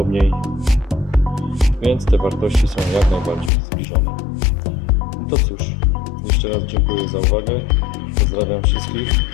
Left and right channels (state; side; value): drops out; right; at 3.5 s